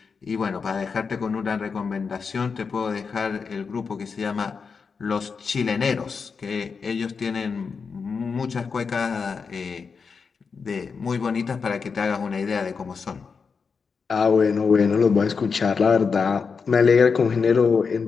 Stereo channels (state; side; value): quieter; right; 5.4 dB